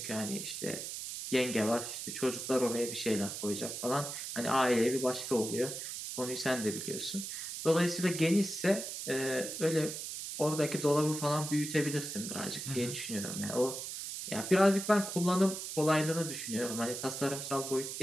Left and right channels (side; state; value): right; noise; hiss, 6 dB below the sound